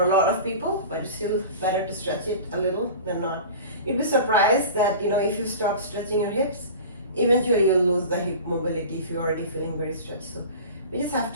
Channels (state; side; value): inverted; both; correlation -0.36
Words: a lot of people, but it's still better to stretch it a little than not. You'd be surprised that, you know, if you stop stretching your hips, eventually you'll lose the hip mobility if you're already feeling very stretched. So we just have